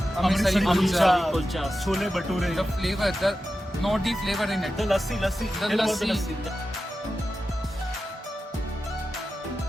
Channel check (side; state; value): both; normal; correlation 0.92